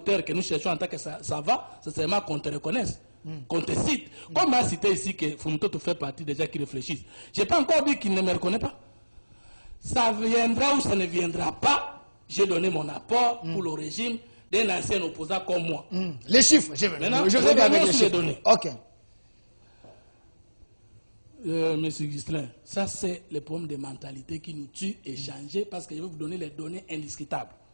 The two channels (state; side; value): inverted; both; correlation -1.00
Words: que nous cherchons en tant que ça va, c'est seulement qu'on te reconnaisse. Qu'on te cite. Comme m'a cité ici que Fumuto fait partie des gens qui réfléchissent. Je n'ai pas encore dit qu'il ne me reconnaît pas. Ça viendra ou ça ne viendra pas. J'ai donné mon apport pour le régime d'un ancien opposant comme moi. Les chiffres, je vais avec les chiffres. Données. Monsieur Ghislain, ça c'est le problème de mentalité qui nous tue et changer parce que je vais vous donner les données indiscutables.